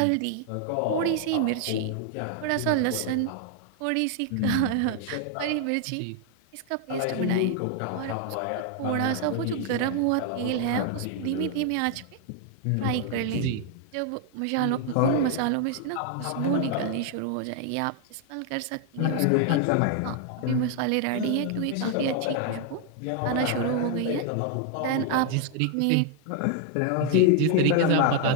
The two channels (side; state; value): both; different; correlation 0.00